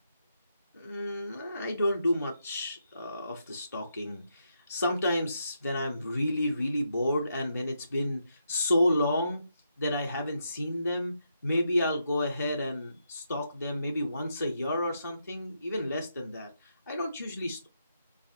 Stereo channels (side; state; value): both; inverted; correlation -0.81